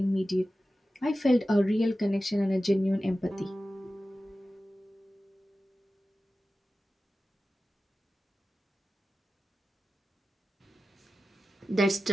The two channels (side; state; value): both; normal; correlation 0.94